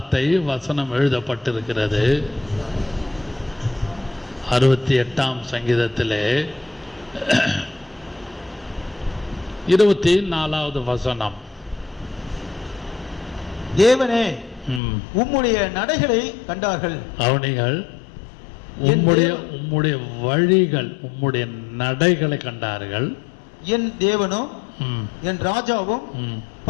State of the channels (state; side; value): drops out; right; at 14.8 s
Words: வசனம் எழுதப்பட்டிருக்கிறது. 68ஆம் சங்கீதத்திலே 24வது வசனம். தேவனே உம்முடைய நடைகளை கண்டார்கள். அவனிகள் உம்முடைய வழிகள், உம்முடைய நடைகளை கண்டார்கள். என் தேவனும் என் ராஜாவும்